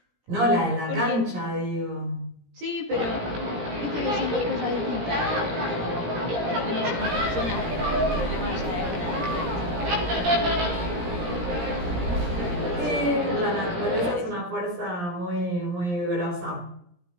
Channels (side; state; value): left; late; 17 ms